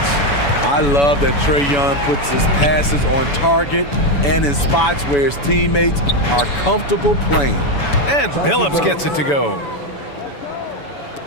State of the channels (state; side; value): late; right; 7.0 ms